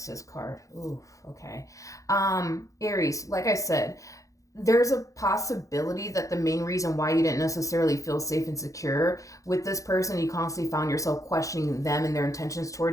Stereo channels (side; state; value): right; late; 0.16 ms